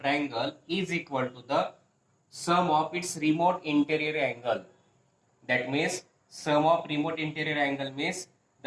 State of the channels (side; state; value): both; identical; correlation 1.00